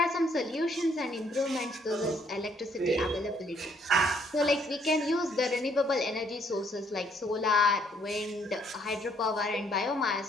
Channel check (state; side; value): normal; both; correlation 0.67